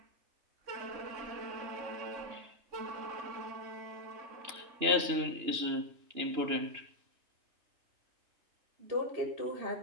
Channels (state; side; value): late; left; 2.9 ms